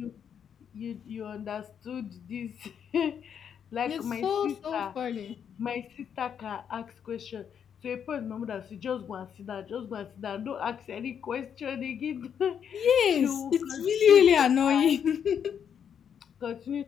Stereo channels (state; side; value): quieter; right; 8.0 dB